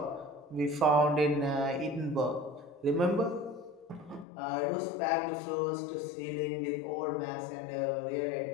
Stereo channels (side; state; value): right; drops out; at 4.2 s